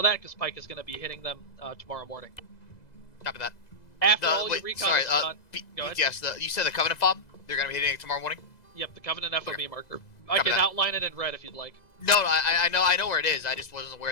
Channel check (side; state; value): right; late; 2.0 ms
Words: that because Pike is going to be hitting them tomorrow morning. Copy that. After all your recon is done, go ahead. BTS, you said the Covenant fob? They're going to be hitting it tomorrow morning? Yep, the Covenant FOB marker. I can outline it in red if you'd like. No, I know where it is. I just wasn't